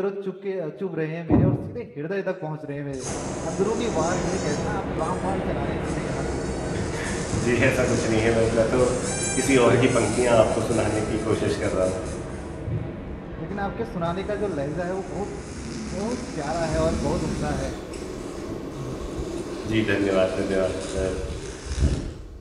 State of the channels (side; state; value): both; identical; correlation 1.00